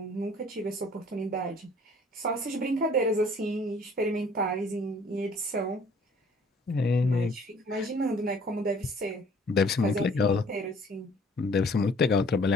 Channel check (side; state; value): both; normal; correlation 0.56